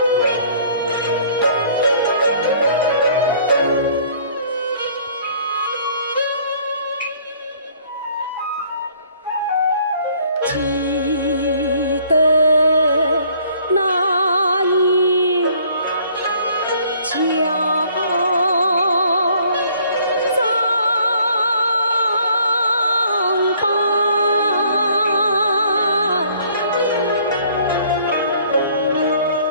记得那一江藏伴，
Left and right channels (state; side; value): inverted; both; correlation -0.59